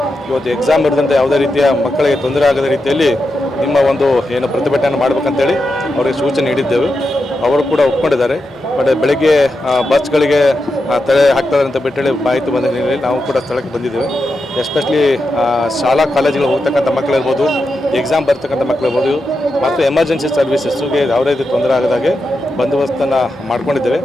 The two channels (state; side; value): normal; both; correlation 0.87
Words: ಇವತ್ತು ಎಕ್ಸಾಮ್ ಇರದಂತೆ ಯಾವುದೇ ರೀತಿಯ ಮಕ್ಕಳಿಗೆ ತೊಂದರೆ ಆಗದ ರೀತಿಯಲ್ಲಿ ನಿಮ್ಮ ಒಂದು ಏನು ಪ್ರತಿಭಟನೆ ಮಾಡಬೇಕಂತೇಳಿ ಅವರಿಗೆ ಸೂಚನೆ ನೀಡಿದ್ದೆವು. ಅವರು ಕೂಡ ಒಪ್ಕೊಂಡಿದ್ದಾರೆ. ಬಟ್ ಬೆಳಗ್ಗೆ ಬಸ್ಗಳಿಗೆ ತಡೆ ಹಾಕ್ತಾರೆ ಅಂತ ಬಿಟ್ಟೇಳಿ ಮಾಹಿತಿ ಬಂದ ಹಿನ್ನೆಲೆಯಲ್ಲಿ ನಾವು ಕೂಡ ಸ್ಥಳಕ್ಕೆ ಬಂದಿದ್ದೇವೆ. ಎಸ್ಪೆಷಲಿ ಶಾಲಾ ಕಾಲೇಜುಗಳು ಹೋಗ್ತಕ್ಕಂಥ ಮಕ್ಕಳಿರ್ಬೋದು, ಎಕ್ಸಾಮ್ ಬರ್ತಕ್ಕಂಥ ಮಕ್ಕಳಿರ್ಬೋದು ಮತ್ತು ಎಮರ್ಜೆನ್ಸಿ ಸರ್ವಿಸಸ್ಗೆ ಯಾವುದೇ ರೀತಿ ತೊಂದರೆ ಆಗದಾಗೆ ಬಂದೋಬಸ್ತನ್ನು ಮಾಡ್ಕೊಂಡಿದ್ದೇವೆ.